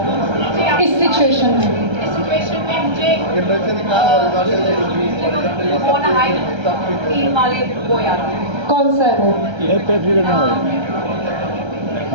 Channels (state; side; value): late; left; 1.3 ms